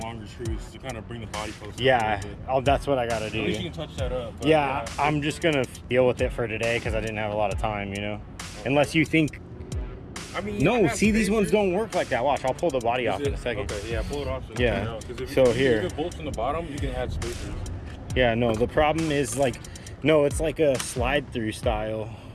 longer screws to kind of bring the body closer. Yeah, that's what I gotta do. At least you can touch that up. Yeah, I'm just gonna deal with it for today because I didn't have a lot of time, you know? Okay. Unless you think... I mean, no, see, these ones don't work like that. Watch, I'll pull the body off in a second. Okay, yeah, pull it off. Yeah, so here. If you bolts in the bottom, you can add spacers. Yeah, no, the problem is like, no, it's like a slide through style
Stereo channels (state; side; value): identical; both; correlation 1.00